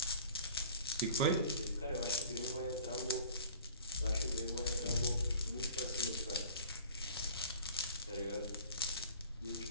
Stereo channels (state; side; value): inverted; both; correlation -0.45